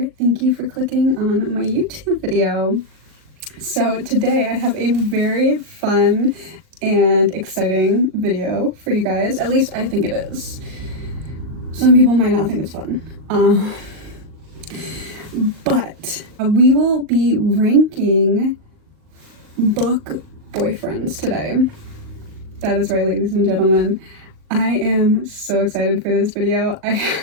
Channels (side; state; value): left; late; 38 ms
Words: thank you for clicking on my YouTube video. So today I have a very fun and exciting video for you guys. At least I think it is. Some people might not think it's fun. But we will be ranking book boyfriends today. That is right, ladies and gentlemen. I am so excited for this video.